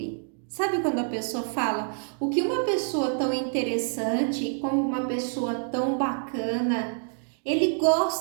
Sabe quando a pessoa fala, o que uma pessoa tão interessante, como uma pessoa tão bacana, ele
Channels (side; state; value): left; silent; 58 dB below the other